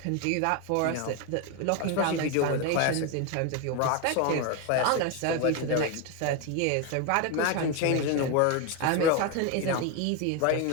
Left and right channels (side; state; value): both; different; correlation 0.02